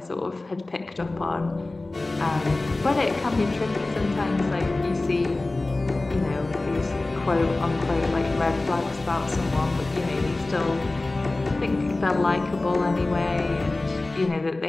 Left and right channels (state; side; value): quieter; right; 3.0 dB